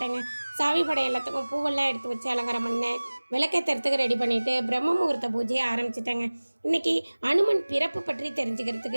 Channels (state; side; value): inverted; both; correlation -1.00